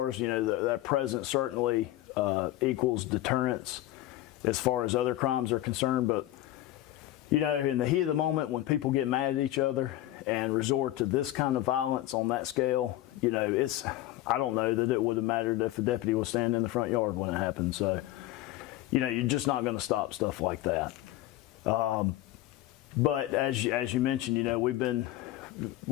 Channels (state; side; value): quieter; right; 15.2 dB